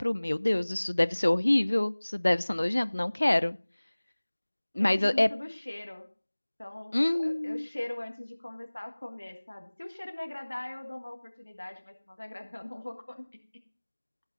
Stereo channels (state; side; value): inverted; both; correlation -1.00